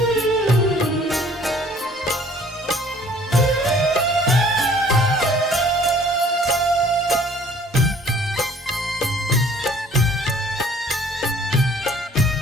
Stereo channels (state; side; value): normal; both; correlation 0.55